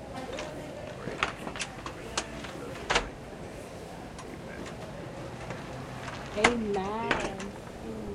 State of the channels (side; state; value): both; identical; correlation 1.00